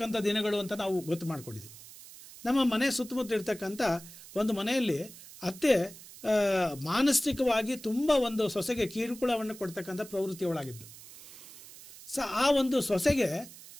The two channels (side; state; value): right; noise; hiss, 17 dB below the sound